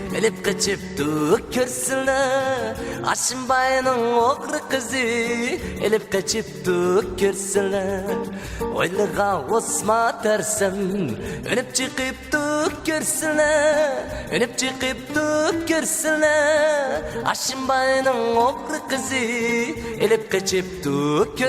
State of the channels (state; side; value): identical; both; correlation 1.00